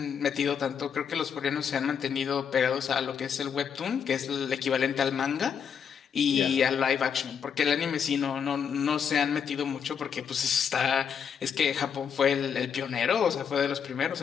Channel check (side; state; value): right; quieter; 7.4 dB